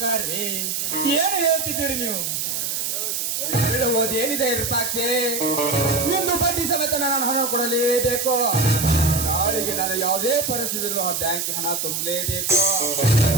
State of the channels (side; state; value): right; noise; hiss, 1 dB below the sound